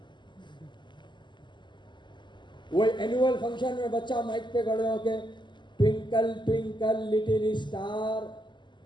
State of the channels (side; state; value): right; late; 0.22 ms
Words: वो एनुअल फंक्शन में बच्चा माइक पे खड़े होके twinkle twinkle little star